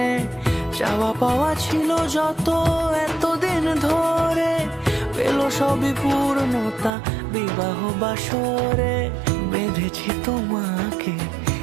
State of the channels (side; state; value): left; drops out; at 6.9 s